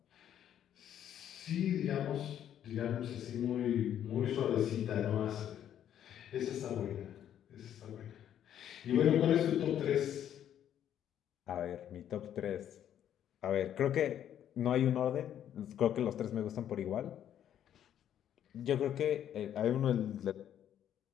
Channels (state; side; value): quieter; right; 10.3 dB